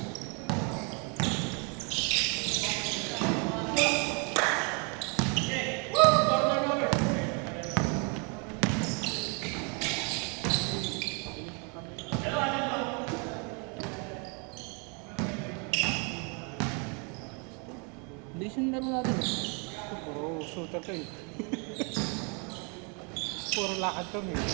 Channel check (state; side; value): quieter; left; 34.9 dB